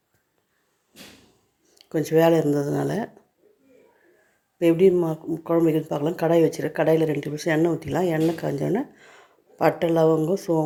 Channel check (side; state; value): both; identical; correlation 1.00